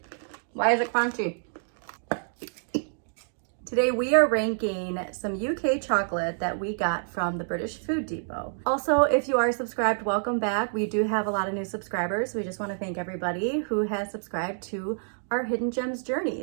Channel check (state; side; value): silent; left; digital silence